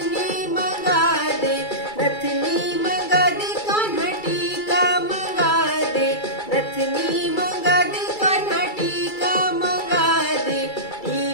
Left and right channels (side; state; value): right; late; 2.3 ms